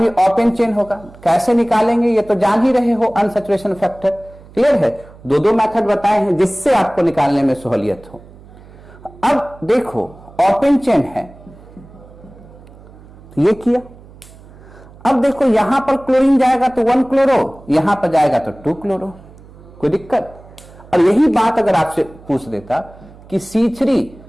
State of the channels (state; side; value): noise; right; hum, 22 dB below the sound